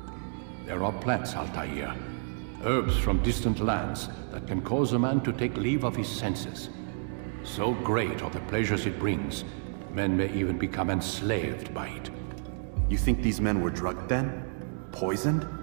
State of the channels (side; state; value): left; silent; 58 dB below the other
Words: There are plants, Altair. Herbs from distant lands that can cause a man to take leave of his senses. So great are the pleasures it brings, men may even become enslaved by it. You think these men were drugged then? Poisoned?